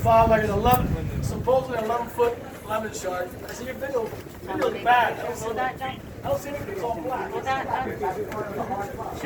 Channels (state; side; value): identical; both; correlation 1.00